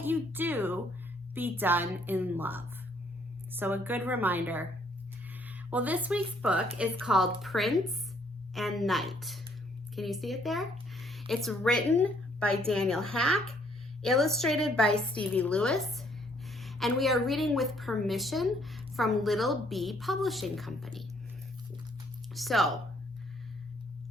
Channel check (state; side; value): normal; both; correlation 0.66